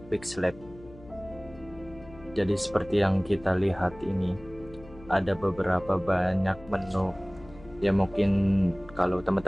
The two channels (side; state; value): left; noise; hum, 20 dB below the sound